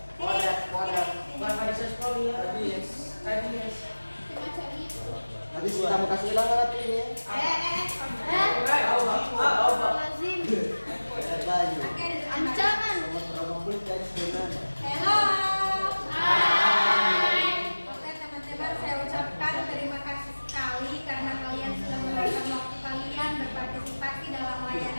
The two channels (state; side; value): inverted; both; correlation -1.00